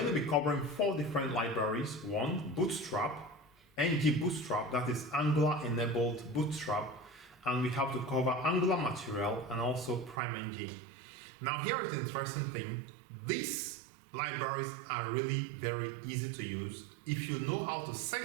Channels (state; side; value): drops out; left; at 10.2 s